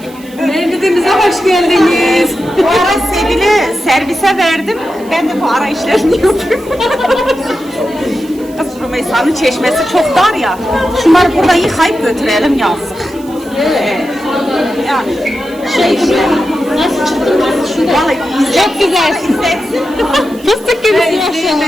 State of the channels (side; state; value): right; noise; hiss, 23 dB below the sound